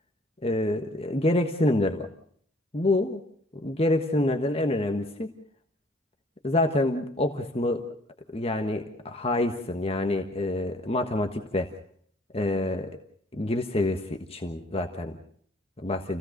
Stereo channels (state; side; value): normal; both; correlation 0.57